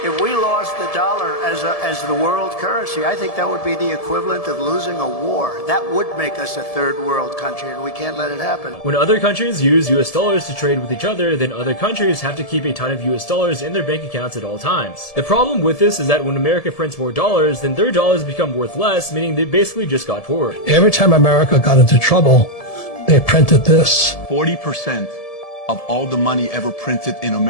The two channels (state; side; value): late; right; 1.7 ms